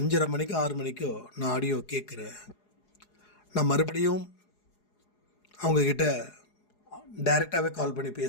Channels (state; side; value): late; right; 4.8 ms